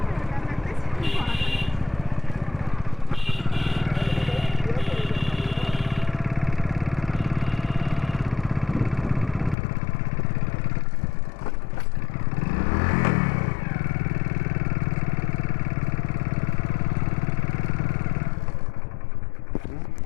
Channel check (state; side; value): drops out; right; at 9.6 s